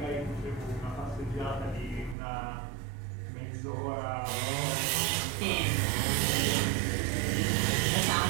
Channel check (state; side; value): drops out; left; at 2.1 s